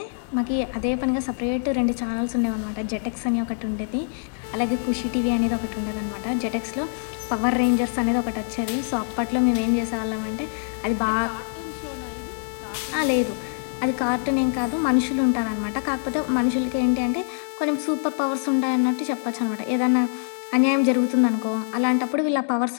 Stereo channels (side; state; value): right; silent; digital silence